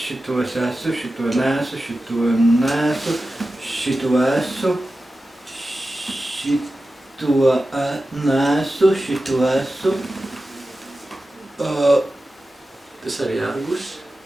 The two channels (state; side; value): normal; both; correlation 0.93